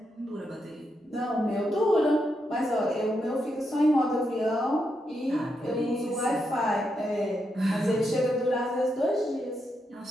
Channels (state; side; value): normal; both; correlation 0.82